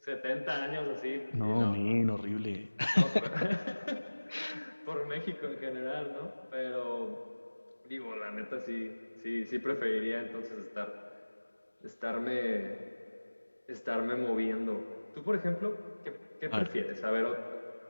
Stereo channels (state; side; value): inverted; both; correlation -1.00